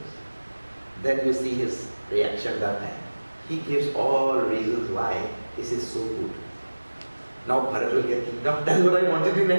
then you see his reaction that time. He gives all reasons why this is so good. Now Bharat will get kingdom. That's what I wanted in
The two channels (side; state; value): both; inverted; correlation -1.00